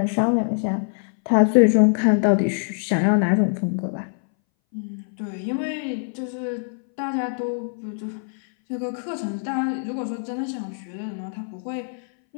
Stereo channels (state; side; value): silent; right; 61 dB below the other